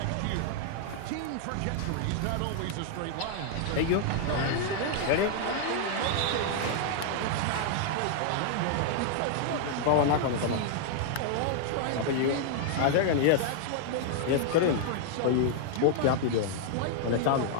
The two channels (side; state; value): both; different; correlation 0.00